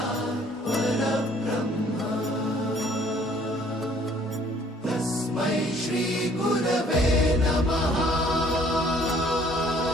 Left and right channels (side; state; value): both; normal; correlation 0.59